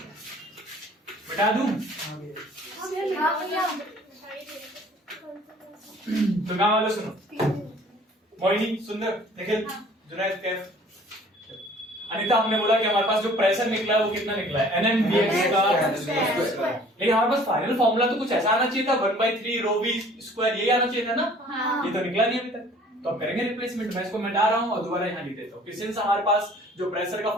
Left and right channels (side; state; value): both; normal; correlation 0.52